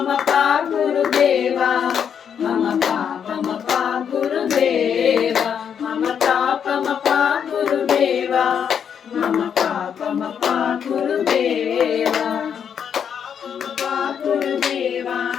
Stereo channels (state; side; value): quieter; right; 7.8 dB